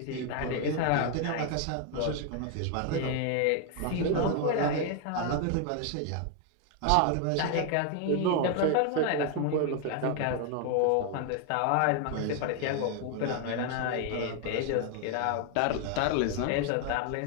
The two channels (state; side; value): different; both; correlation 0.01